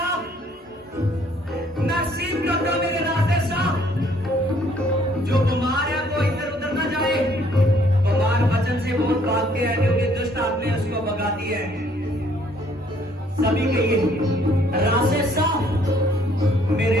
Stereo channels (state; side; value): normal; both; correlation 0.63